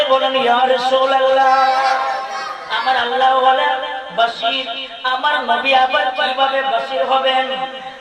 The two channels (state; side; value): identical; both; correlation 1.00